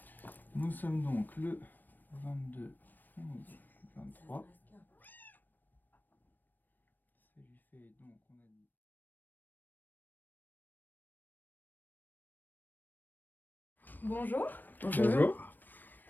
Nous sommes donc le 22, 11, 23. Ça lui fait donc, on a dit. Bonjour. Bonjour.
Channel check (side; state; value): right; late; 0.090 ms